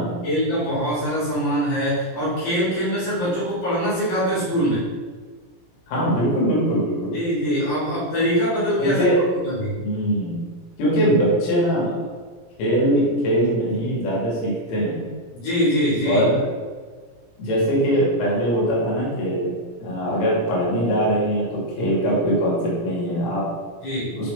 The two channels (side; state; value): right; late; 17 ms